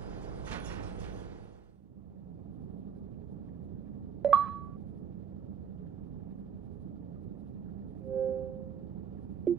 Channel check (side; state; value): left; quieter; 8.0 dB